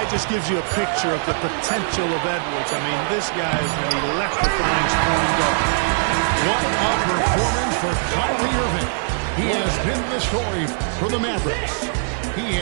just gives you a picture of the potential of Edwards. I mean, this guy is an electrifying scoring guard. What a performance for Kyrie Irving. He has been the story for the Mavericks. He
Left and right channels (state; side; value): silent; left; digital silence